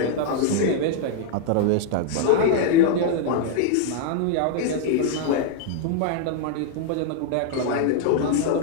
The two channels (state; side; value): different; both; correlation 0.00